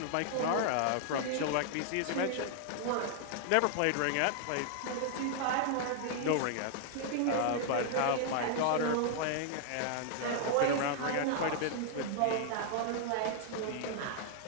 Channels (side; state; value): both; different; correlation -0.01